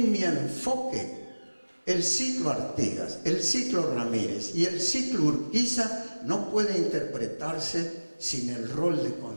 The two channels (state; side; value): inverted; both; correlation -1.00